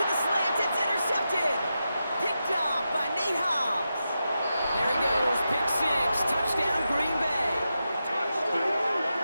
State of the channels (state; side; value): inverted; both; correlation -0.89